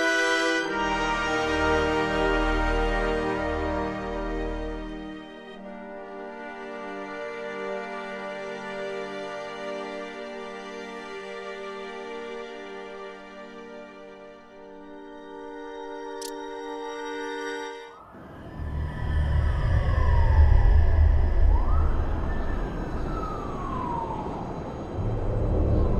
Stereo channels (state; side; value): identical; both; correlation 1.00